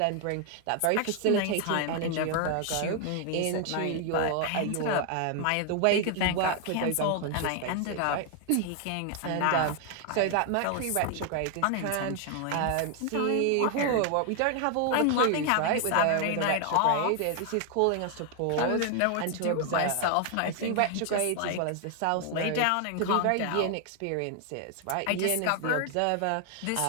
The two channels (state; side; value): different; both; correlation 0.00